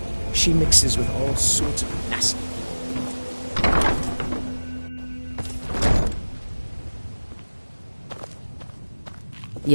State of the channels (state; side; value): inverted; both; correlation -1.00